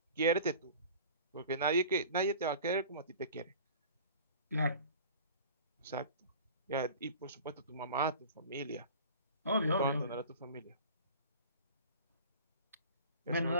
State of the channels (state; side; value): inverted; both; correlation -0.41